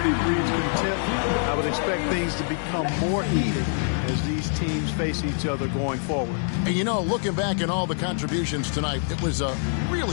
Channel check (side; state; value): right; silent; 61 dB below the other